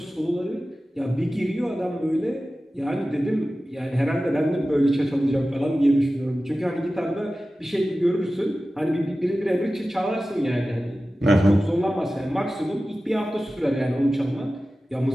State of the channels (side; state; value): both; normal; correlation 0.95